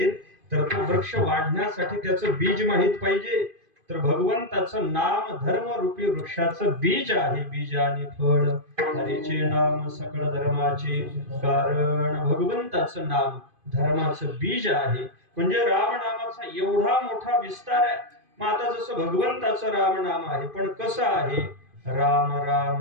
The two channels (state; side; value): late; left; 2.5 ms